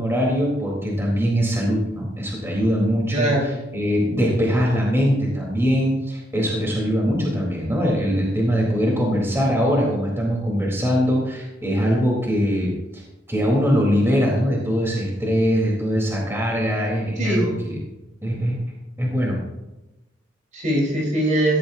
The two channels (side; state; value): both; normal; correlation 0.77